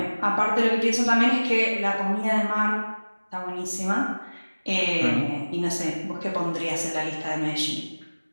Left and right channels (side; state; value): both; inverted; correlation -1.00